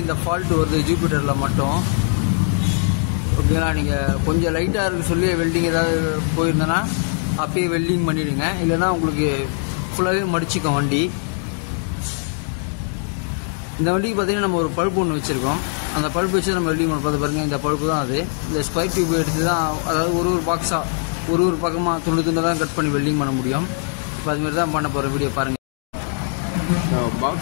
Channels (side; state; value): right; silent; 56 dB below the other